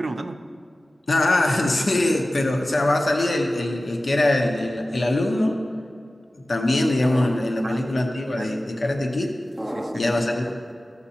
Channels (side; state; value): both; normal; correlation 0.96